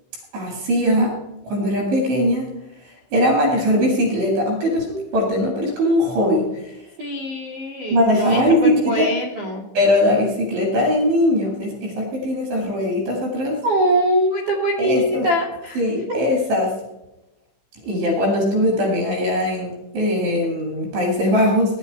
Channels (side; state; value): left; late; 15 ms